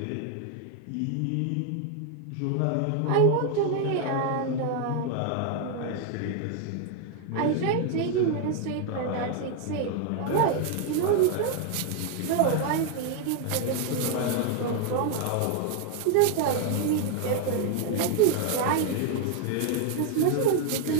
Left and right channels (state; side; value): different; both; correlation 0.00